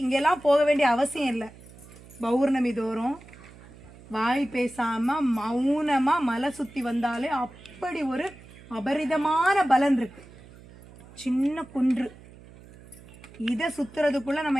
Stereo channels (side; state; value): right; noise; hum, 21 dB below the sound